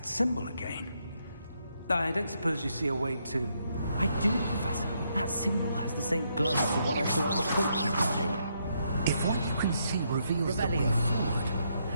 symbol again. I don't suppose you see a way to... I do, Professor. That symbol has the same glow as the one I saw on the portkey container. If what you can see reveals the way forward,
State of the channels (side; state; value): both; inverted; correlation -0.76